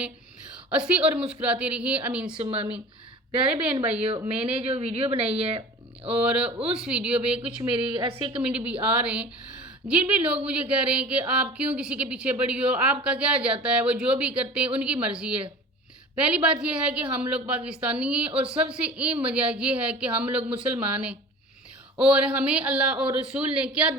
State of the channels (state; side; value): normal; both; correlation 0.39